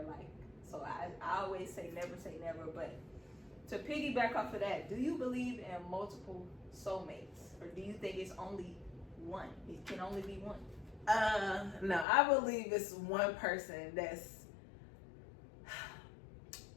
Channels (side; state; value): right; drops out; at 12.1 s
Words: Like, so I always say never. But to piggyback off of that, do you believe in multiple soulmates, or do you think it's only one? It can only be one. No, I believe it's one person that's.